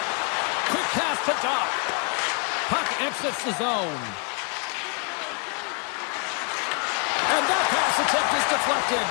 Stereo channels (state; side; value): quieter; right; 37.1 dB